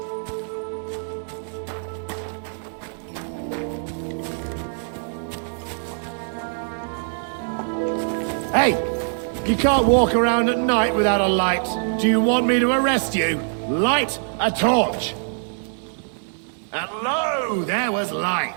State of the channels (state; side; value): silent; left; digital silence